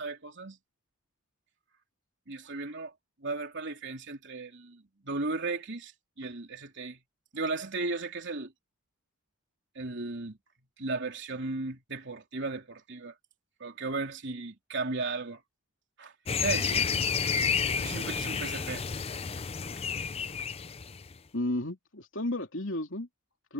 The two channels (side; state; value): both; normal; correlation 0.09